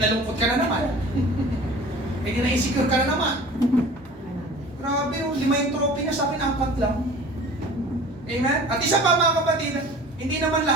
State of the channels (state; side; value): normal; both; correlation 0.43